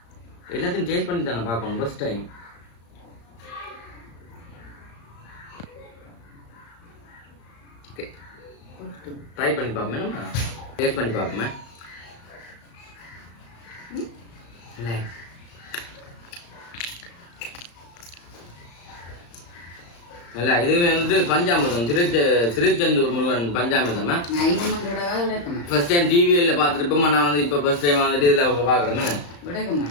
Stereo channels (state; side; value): late; right; 35 ms